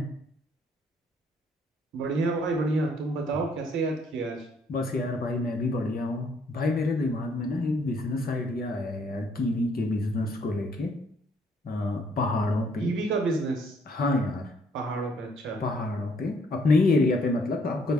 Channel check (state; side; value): normal; both; correlation 0.66